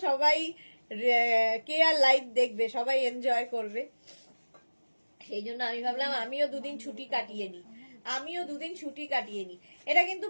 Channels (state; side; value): inverted; both; correlation -1.00